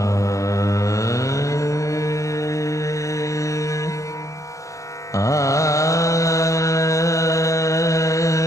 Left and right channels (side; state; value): right; late; 0.15 ms